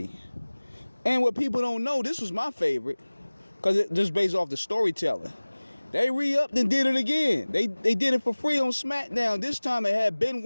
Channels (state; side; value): inverted; both; correlation -1.00